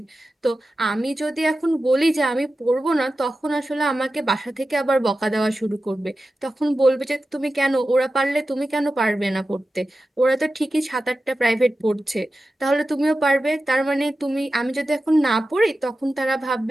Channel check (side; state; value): both; normal; correlation 0.93